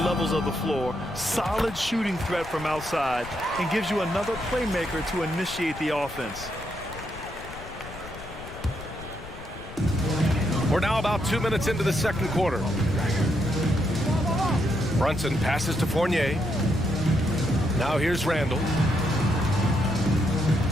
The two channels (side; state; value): left; noise; rumble, 14 dB below the sound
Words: levels of the floor. Solid shooting threat from outside. And gives you another playmaker to initiate the offense. We're now about 2 minutes into the second quarter. Brunson passes to Fournier. Now here's Randall.